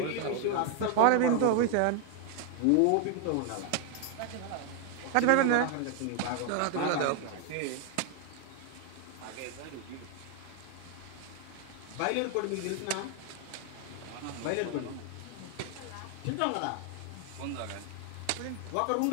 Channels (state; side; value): different; both; correlation 0.00